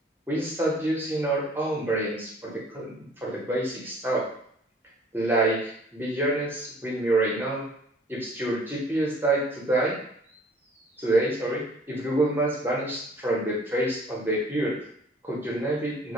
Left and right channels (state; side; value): normal; both; correlation 0.53